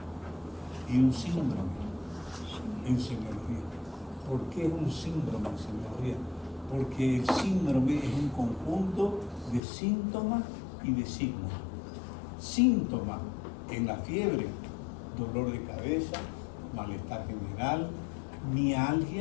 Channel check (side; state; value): right; drops out; at 9.6 s